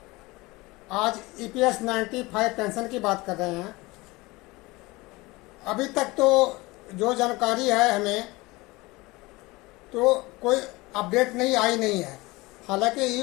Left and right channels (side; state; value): right; quieter; 22.2 dB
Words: आज EPS 95 pension की बात कर रहे हैं। अभी तक तो जो जानकारी है हमें, तो कोई अपडेट आई नहीं है। हालांकि